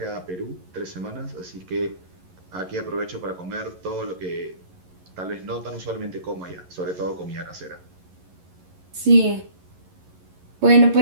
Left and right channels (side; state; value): left; late; 11 ms